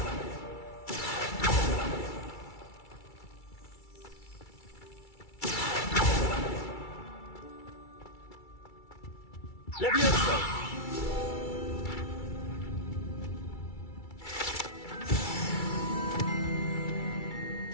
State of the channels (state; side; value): late; right; 2.3 ms